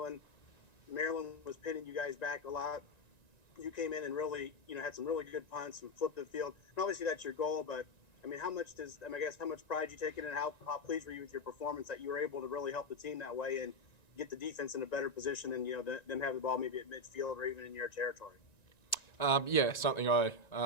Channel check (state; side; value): late; right; 1.9 ms